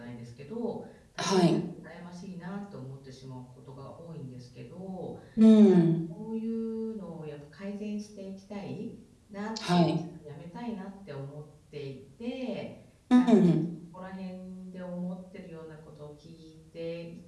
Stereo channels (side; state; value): both; identical; correlation 1.00